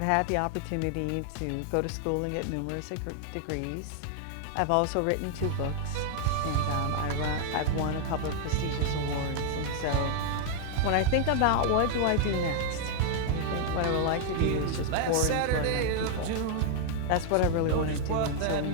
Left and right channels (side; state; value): both; different; correlation 0.00